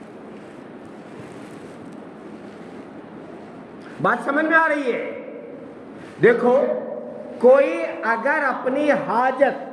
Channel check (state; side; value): identical; both; correlation 1.00